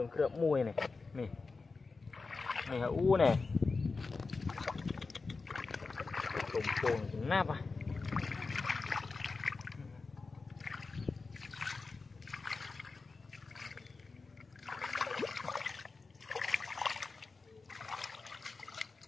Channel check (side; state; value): right; quieter; 4.1 dB